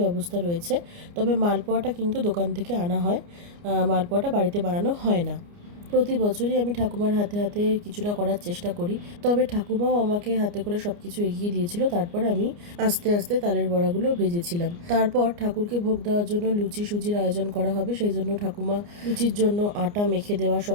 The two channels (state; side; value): late; left; 29 ms